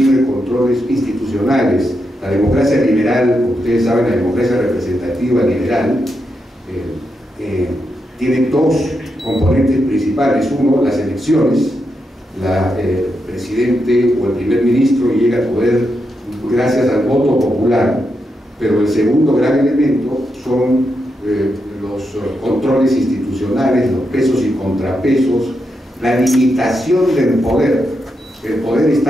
controles institucionales. La democracia liberal, como ustedes saben, la democracia representativa liberal tiene dos componentes principales. Uno, las elecciones. El presidente o el primer ministro llega al poder gracias al voto popular, pero el segundo gran elemento son los controles institucionales, los pesos y contrapesos, la limitación del poder. El poder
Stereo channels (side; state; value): both; normal; correlation 0.84